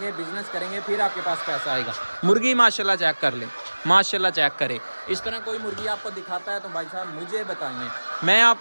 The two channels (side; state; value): both; inverted; correlation -1.00